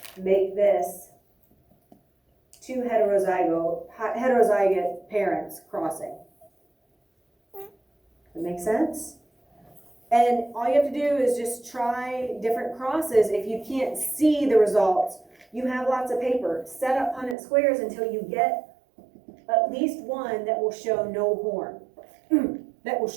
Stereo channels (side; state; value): left; drops out; at 17.4 s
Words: make this two heterozygous parents crossing. That makes sense? And all you have to do is just try different crosses. If you can't see the results, you have lots of paper. Set up Punnett squares until you get at least one that will show no horn. That will